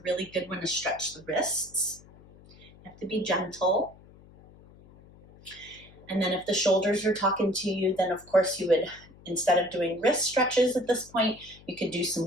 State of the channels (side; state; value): left; noise; hum, 23 dB below the sound